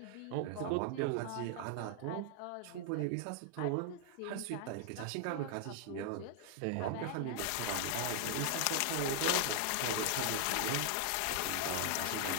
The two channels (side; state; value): both; different; correlation 0.00